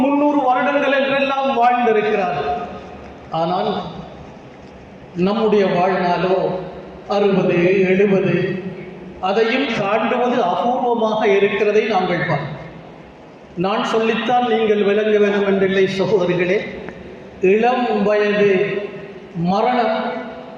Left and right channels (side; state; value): both; identical; correlation 1.00